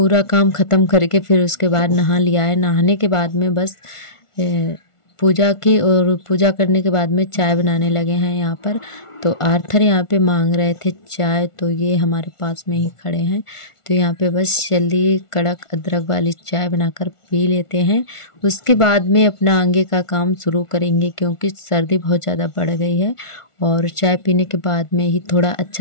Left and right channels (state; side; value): late; right; 1.4 ms